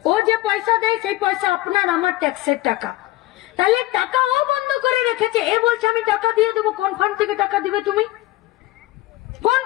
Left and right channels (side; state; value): right; quieter; 17.7 dB